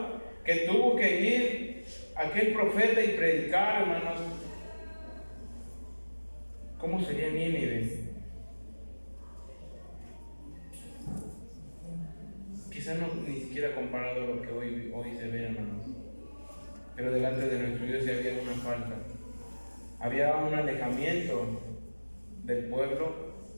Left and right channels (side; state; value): both; inverted; correlation -1.00